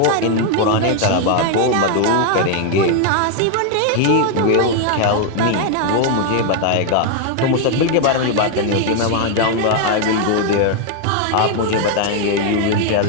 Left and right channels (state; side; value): different; both; correlation 0.00